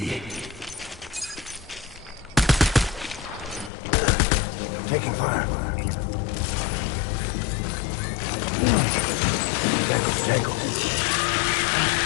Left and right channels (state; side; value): drops out; right; at 3.7 s